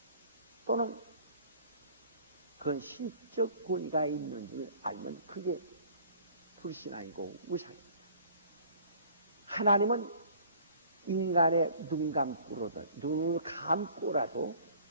또는 그런 신적 권위가 있는 줄 알면 그게 불신앙이고 우상입니다. 하나님은 인간의 눈을 감고라도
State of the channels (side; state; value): both; inverted; correlation -0.52